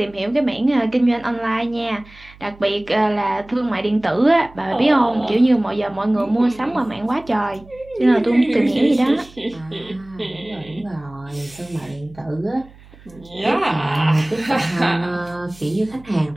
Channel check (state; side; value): noise; right; hum, 23 dB below the sound